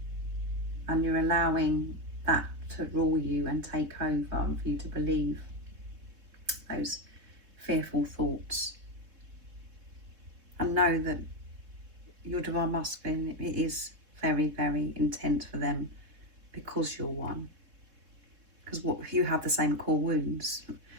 and you're allowing that to rule you and take over and for you to believe those fearful thoughts. And know that your divine masculine, it is very, very intent for them because you're one. Because you have the same core wounds.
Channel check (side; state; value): left; late; 3.8 ms